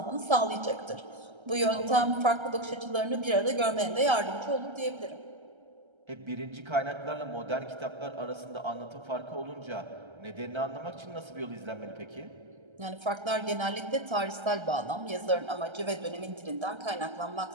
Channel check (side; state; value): left; late; 1.3 ms